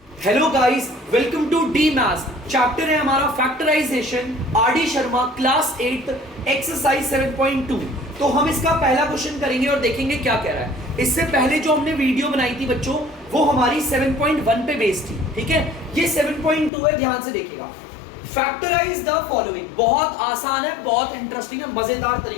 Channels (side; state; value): right; drops out; at 16.7 s